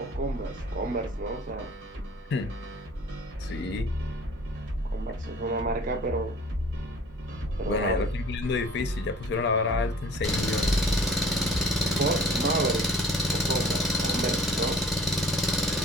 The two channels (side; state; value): both; normal; correlation 0.49